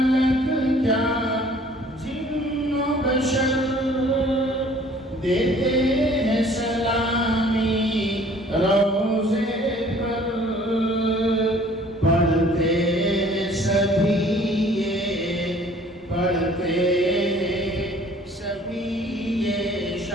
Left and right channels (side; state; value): both; normal; correlation 0.54